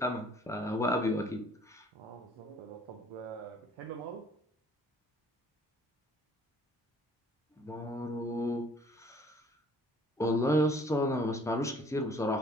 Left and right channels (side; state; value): both; normal; correlation 0.57